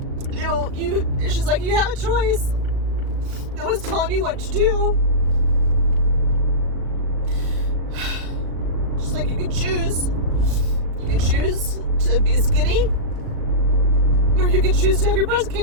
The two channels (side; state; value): left; late; 37 ms